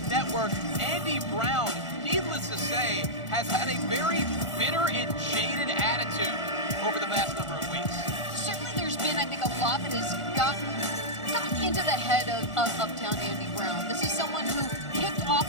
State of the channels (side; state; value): right; late; 1.4 ms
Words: Network. Andy Brown, needless to say, has had a very bitter and jaded attitude over the past number of weeks. Certainly there's been, I think, a lot that has gotten into the head of Uptown Andy Brown. This is someone who kicked